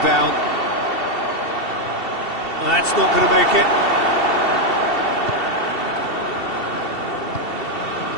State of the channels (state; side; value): late; right; 2.7 ms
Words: down. That's not going to make it.